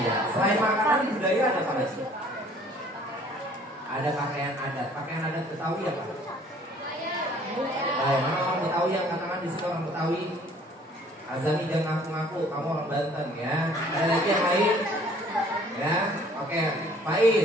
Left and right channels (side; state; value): both; normal; correlation 0.56